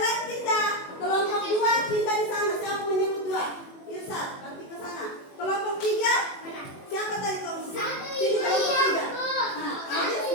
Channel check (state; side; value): late; right; 21 ms